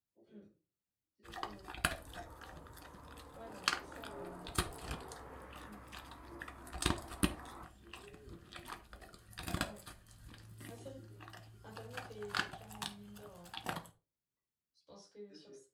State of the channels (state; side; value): identical; both; correlation 1.00